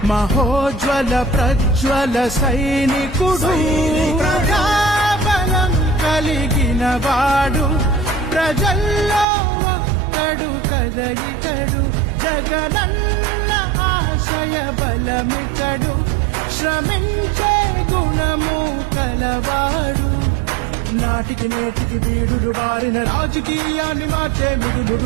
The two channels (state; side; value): drops out; left; at 9.2 s